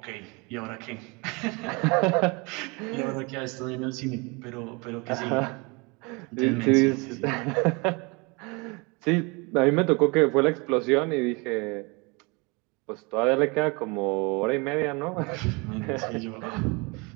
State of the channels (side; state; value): left; quieter; 28.6 dB